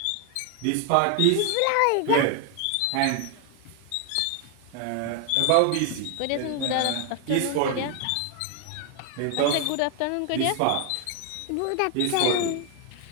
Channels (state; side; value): different; both; correlation 0.00